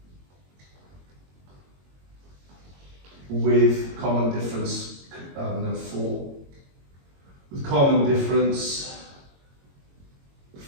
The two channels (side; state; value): left; late; 22 ms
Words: with common difference, I don't know, 4. With common difference